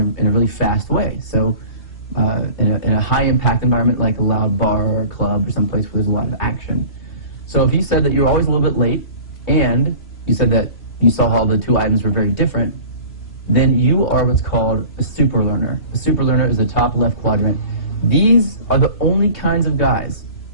in a very fast way. So in a high-impact environment like a loud bar or a club, someplace where there's a lot of action. So if you said that you're always a little bit late, and you said that you saw how the two items were very different, then you are what's called a super learner. A super learner is the top left quadrant. These are the only kinds of guys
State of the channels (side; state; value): right; late; 3.0 ms